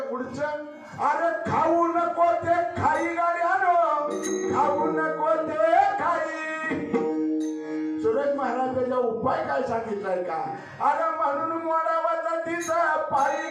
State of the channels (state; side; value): identical; both; correlation 1.00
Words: पुढचं अरे खाऊ नको ते खाई गाड्यानो, खाऊ नको ते खाई. सुरेश महाराजांचा उपाय काय सांगितलाय का? अरे म्हणून मोडावाचा तिचा पायी